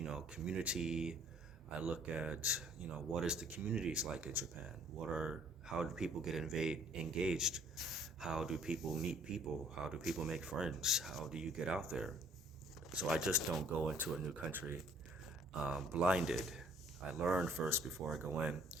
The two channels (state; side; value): normal; both; correlation 0.58